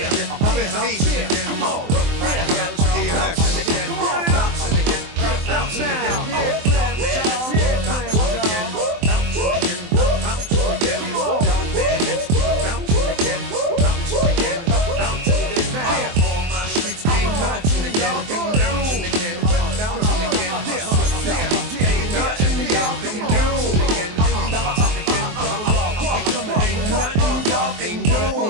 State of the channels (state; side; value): late; left; 23 ms